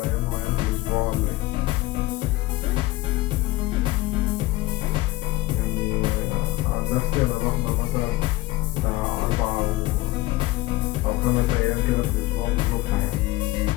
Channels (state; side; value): quieter; right; 18.9 dB